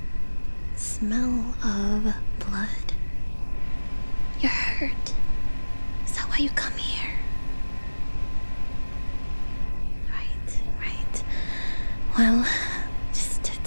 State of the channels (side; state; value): both; inverted; correlation -1.00